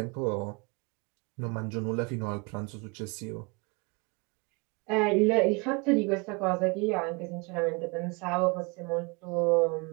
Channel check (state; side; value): quieter; left; 29.7 dB